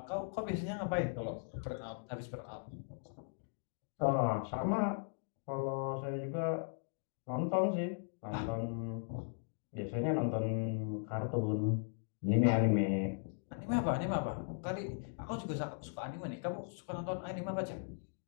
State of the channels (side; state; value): right; silent; digital silence